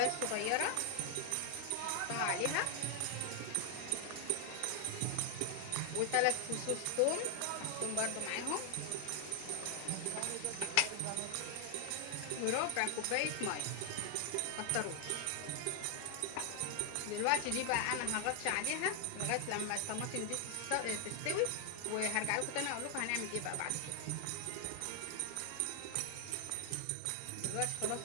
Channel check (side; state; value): both; different; correlation 0.00